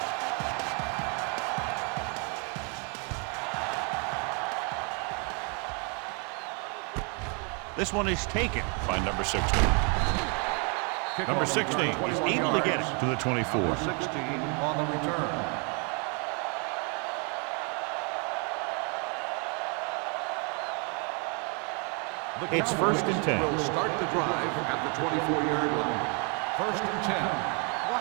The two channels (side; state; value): left; quieter; 35.9 dB